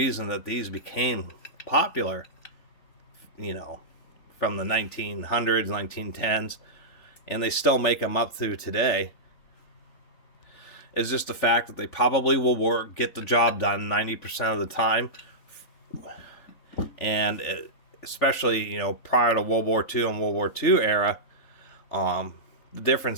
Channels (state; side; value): late; right; 3.4 ms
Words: that these became popular, from the 1900s, 1910s, and they still make them up through today, is just the fact that they probably will get the job done 90% of the time. And especially, prior to World War II and World War II era, the